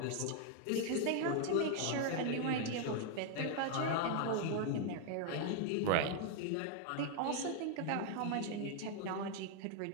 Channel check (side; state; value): both; different; correlation 0.00